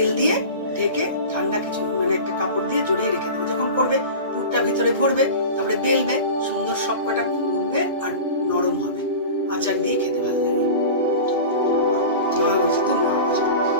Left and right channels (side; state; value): both; inverted; correlation -0.33